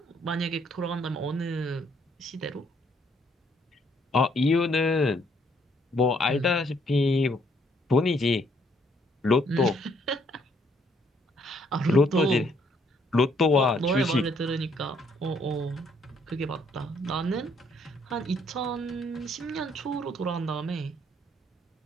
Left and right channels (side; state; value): both; normal; correlation 0.68